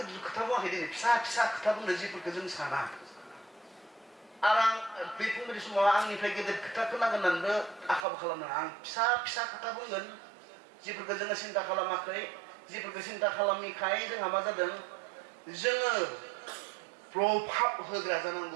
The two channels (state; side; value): drops out; left; at 8.1 s